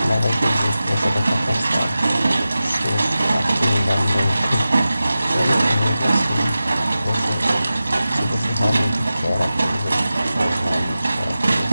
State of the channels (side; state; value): both; inverted; correlation -0.94